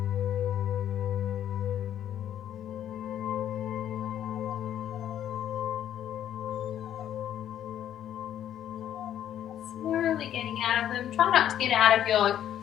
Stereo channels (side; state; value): right; quieter; 10.7 dB